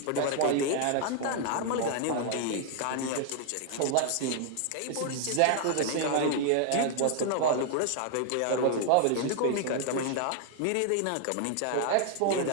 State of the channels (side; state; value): both; different; correlation 0.00